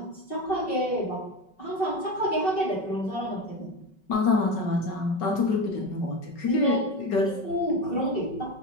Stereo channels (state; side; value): late; right; 5.3 ms